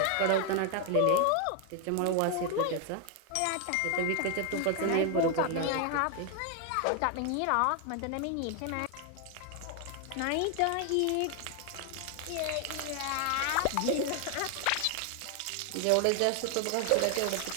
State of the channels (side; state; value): both; different; correlation 0.00